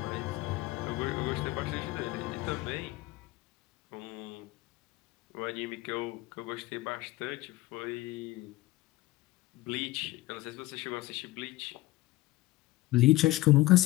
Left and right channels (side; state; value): right; quieter; 18.4 dB